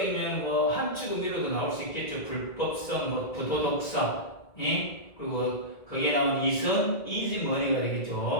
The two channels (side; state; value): right; late; 1.9 ms